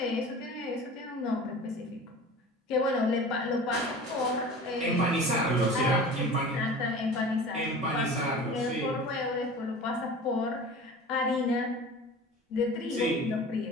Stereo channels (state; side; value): normal; both; correlation 0.38